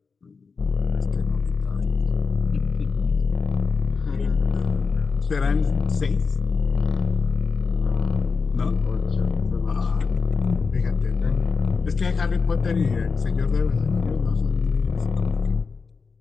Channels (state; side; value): quieter; right; 4.9 dB